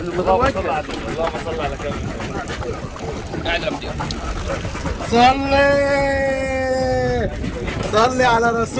اللهم صل على النبي. اللهم صل على كامل. قاعد يا مدير. صلي على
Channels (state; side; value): identical; both; correlation 1.00